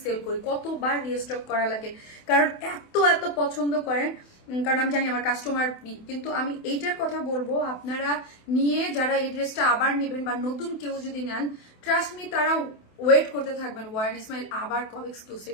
সেল করি, কতবার রিস্টক করা লাগে, কারণ এত এত পছন্দ করেন, কারণ আমি জানি আমার কাস্টমার। কিন্তু আমি এইটার কথা বলবো, আপনারা নিয়ে যারা এই ড্রেসটা আবার নেবেন বা নতুন কেউ যদি নেন, ট্রাস্ট মি তারা ওয়েট করতে থাকবেন ওয়ারেন ইসমাইল আবার কবে এক্সক্লুসিভ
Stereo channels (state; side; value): late; right; 28 ms